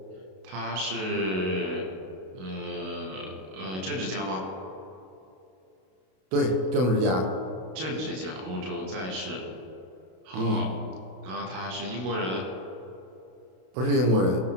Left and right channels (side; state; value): left; late; 32 ms